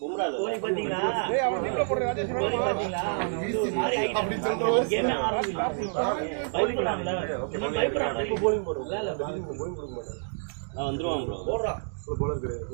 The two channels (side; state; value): left; silent; digital silence